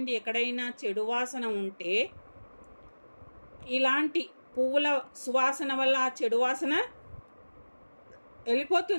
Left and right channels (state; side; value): inverted; both; correlation -1.00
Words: ఎక్కడైనా చెడు వాసన ఉంటే ఇలాంటి పువ్వుల సువాసన వల్ల ఆ చెడు వాసన